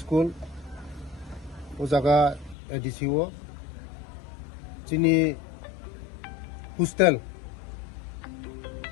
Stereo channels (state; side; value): drops out; right; at 2.6 s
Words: ujaga ADCO sini hostel